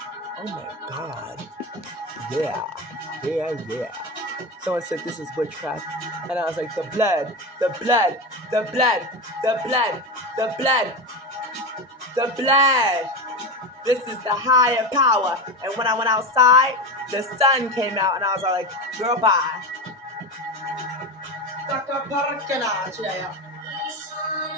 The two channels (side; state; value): both; normal; correlation 0.20